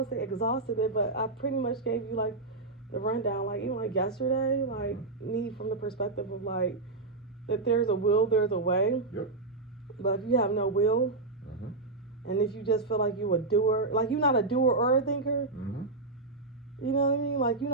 to say exhausted it, but I pretty much gave you like the rundown, like even like yesterday, like me from the perspective of like, if there's a will, there's a way. Yep. But if you have no will, and if you just feel like you a doer, like you're not a doer or a thinker, you know what I mean? Like you're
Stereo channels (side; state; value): left; quieter; 3.4 dB